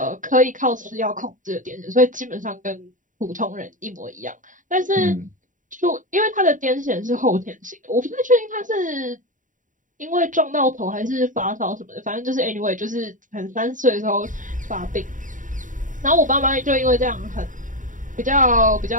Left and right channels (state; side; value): late; left; 0.38 ms